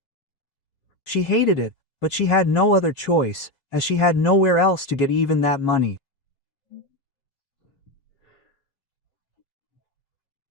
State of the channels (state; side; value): late; right; 5.3 ms